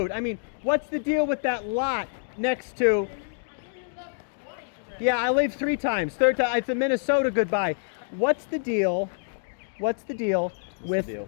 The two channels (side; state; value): right; silent; digital silence